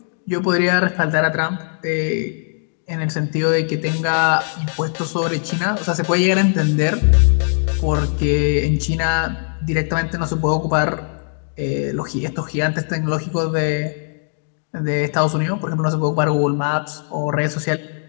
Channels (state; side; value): silent; right; digital silence